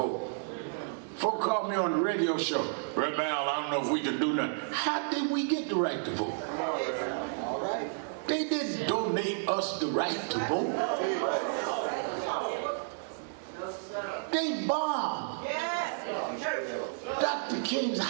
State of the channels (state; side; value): silent; left; digital silence